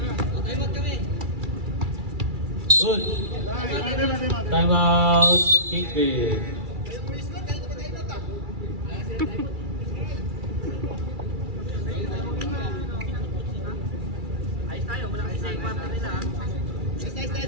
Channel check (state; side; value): late; left; 2.3 ms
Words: Good. Time out. Kingpin.